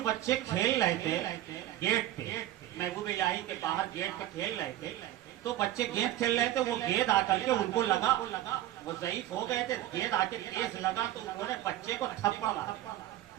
بچے کھیل رہے تھے گیٹ پہ، محبوب الہی کے باہر گیٹ پہ کھیل رہے تھے. تو بچے گیند کھیل رہے تھے، وہ گیند آ کر کے ان کو لگا، وہ ضعیف ہو گئے تھے، گیند آ کے تیز لگا تو انہوں نے بچے کو تھپڑ مارا.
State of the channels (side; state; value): left; quieter; 13.9 dB